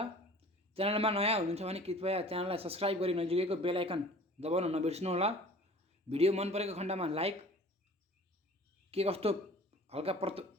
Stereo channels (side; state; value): both; normal; correlation 0.46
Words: च्यानलमा नयाँ हुनुहुन्छ भने कृपया च्यानललाई सब्स्क्राइब गरी नजिकैको बेल आइकन दबाउन नबिर्सनु होला। भिडियो मन परेको खण्डमा लाइक, के कस्तो हल्का